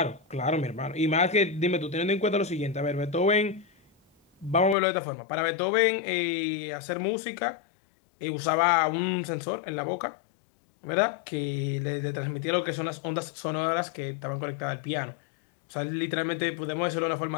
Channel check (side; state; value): right; drops out; at 4.8 s